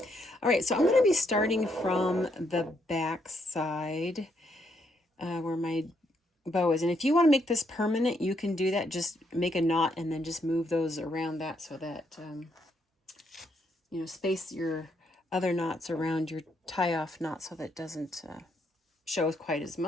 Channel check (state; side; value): normal; both; correlation 0.75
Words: right, so I'm going to be starting from the back side where my bow is, and if you want to make this permanent, you can do that. Just make a knot and then just move those around that so that space your other knots around your tie-off knot so that it doesn't show quite as